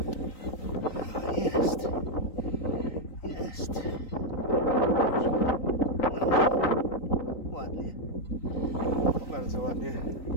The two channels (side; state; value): right; late; 3.9 ms